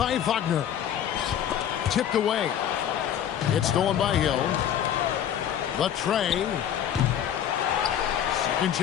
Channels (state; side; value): quieter; right; 9.8 dB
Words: Wagner. Tipped away. It's stolen by Hill. The tray. Second